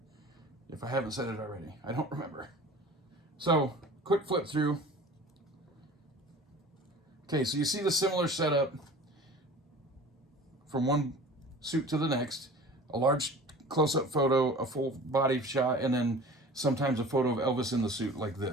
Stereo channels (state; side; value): normal; both; correlation 0.42